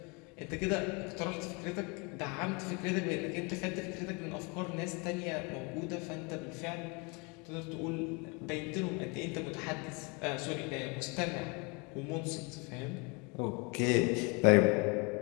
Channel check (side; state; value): right; quieter; 30.4 dB